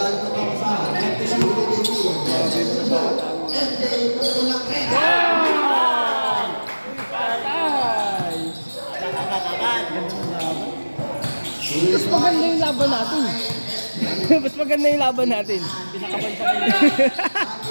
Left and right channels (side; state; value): both; inverted; correlation -1.00